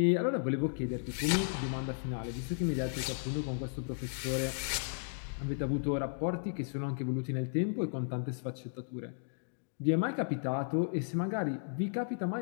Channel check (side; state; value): right; silent; digital silence